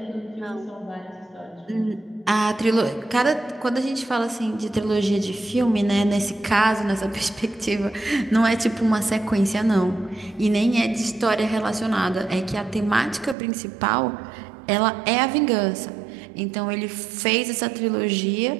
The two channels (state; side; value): drops out; left; at 13.4 s